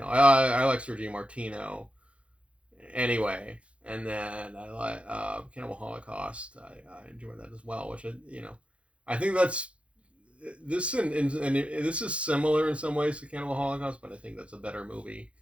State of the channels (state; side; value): late; left; 0.061 ms